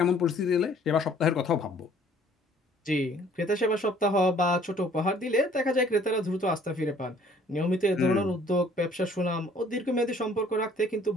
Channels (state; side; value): normal; both; correlation 0.57